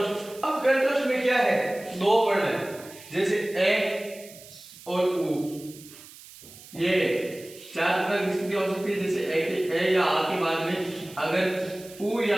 अब कंठोष्ठ में क्या है? दो वर्ण है, जैसे ए और उ। ये चार प्रकार की स्थिति हो सकती है, जैसे ए या आ के बाद में अगर उ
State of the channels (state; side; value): noise; right; hiss, 19 dB below the sound